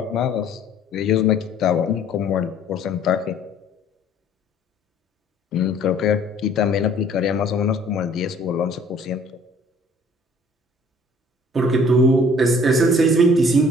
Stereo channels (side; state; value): both; normal; correlation 0.55